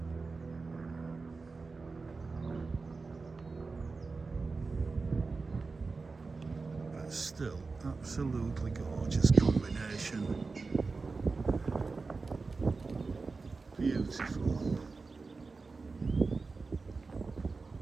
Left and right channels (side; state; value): left; quieter; 4.1 dB